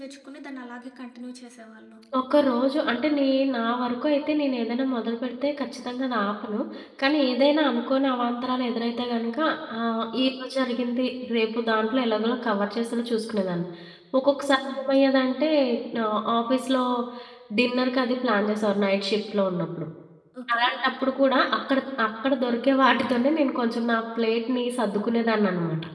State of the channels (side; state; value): both; identical; correlation 1.00